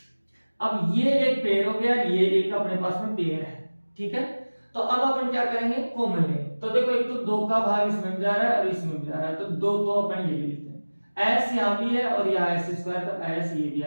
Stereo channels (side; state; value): both; inverted; correlation -1.00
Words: अब ये एक पेयर हो गया, ये एक अपने पास में पेयर है, ठीक है। तो अब अपन क्या करेंगे, कॉमन लेंगे। तो देखो एक तो 2 का भाग इसमें भी जा रहा है और इसमें भी जा रहा है, तो 2 तो अपन ये ले लेते हैं, s यहां भी है और यहाँ s², तो s ये भी